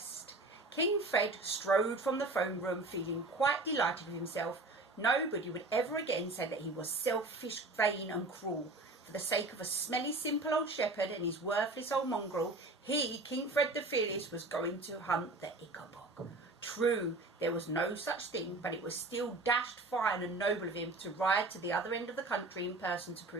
King Fred strode from the throne room feeling quite delighted with himself. Nobody would ever again say that he was selfish, vain and cruel. For the sake of a smelly, simple old shepherd and his worthless old mongrel, he, King Fred the Fearless, was going to hunt the Ickabog. True, there was no such thing, but it was still dashed fine and noble of him to ride to the other end of the country in person to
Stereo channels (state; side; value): quieter; left; 3.0 dB